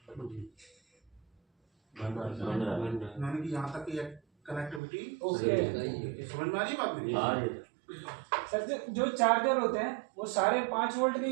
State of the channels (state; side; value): drops out; left; at 4.8 s